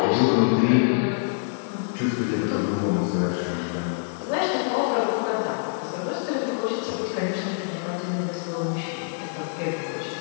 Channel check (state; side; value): silent; right; 61 dB below the other